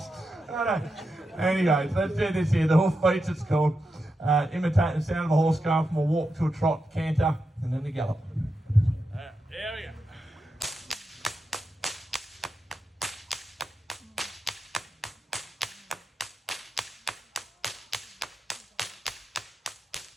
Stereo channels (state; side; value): normal; both; correlation 0.87